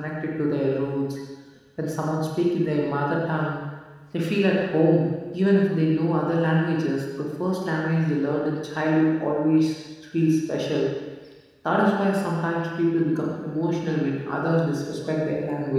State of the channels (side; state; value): both; identical; correlation 1.00